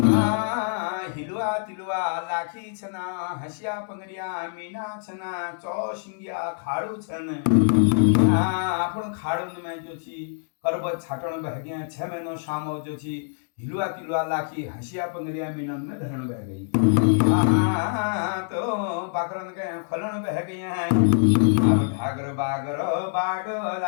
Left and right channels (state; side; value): silent; right; digital silence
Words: हिलुआ तिलुआ लाखी छना हसिया पंगरिया मीना छना चौसिंगिया खाड़ू छन आपण खाड़ू में जो छी करबत छाटण बहगिया 6 महीनो शामो जो छी हिलुआ तिलुआ लाखी हसिया पंगरिया मीनन में धरण बह गई तो बाकरन के खलन बह गई हैं अब ढागर बागर बाडो